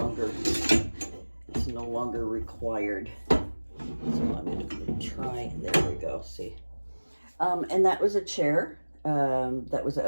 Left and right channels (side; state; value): both; inverted; correlation -1.00